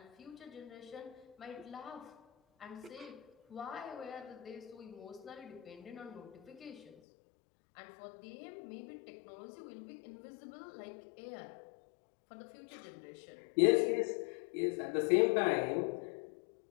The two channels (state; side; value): drops out; right; at 7.0 s